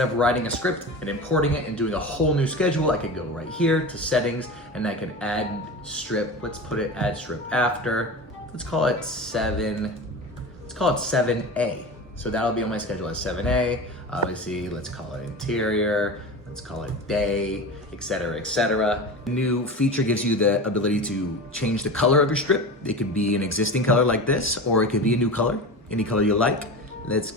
of writing a script and importing it and doing a whole new schedule, I could go right here to settings and I could add strip. Let's put it add strip after. Let's call it 7. Let's call it 7A. So that'll be on my schedule as 7A. Obviously, let's call it interior. Let's call it day, etc., etc. The new feature gives you the ability to change the color of your strip. It could be an existing color like this, or it could be a new color, any color you like. Let's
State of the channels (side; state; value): both; normal; correlation 0.29